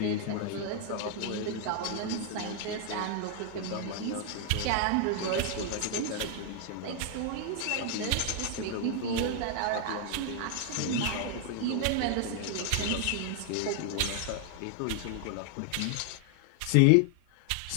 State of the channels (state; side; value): different; both; correlation 0.00